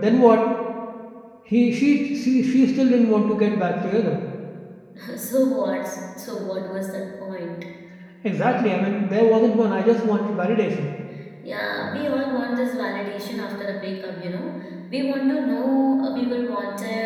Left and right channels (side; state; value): both; identical; correlation 1.00